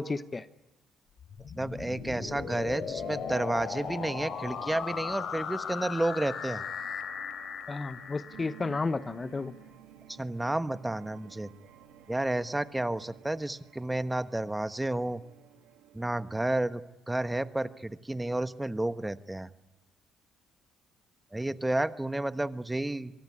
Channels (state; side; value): normal; both; correlation 0.94